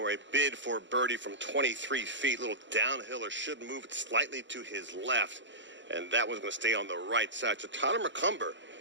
a bid for birdie from 23 feet. Little downhiller, should move it slightly to his left, and that one's going to stay on the right side. So Tyler McCumber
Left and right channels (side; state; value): left; late; 0.54 ms